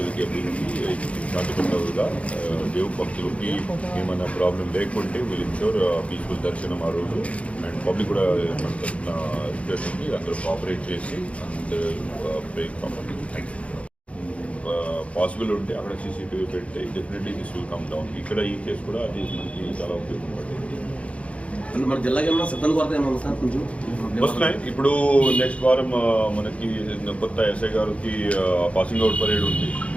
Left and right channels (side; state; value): right; late; 0.063 ms